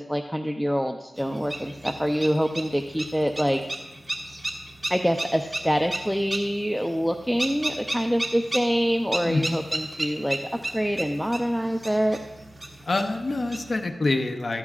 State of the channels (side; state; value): both; normal; correlation 0.98